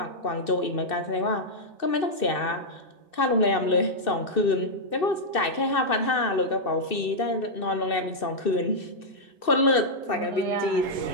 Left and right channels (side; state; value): right; late; 2.6 ms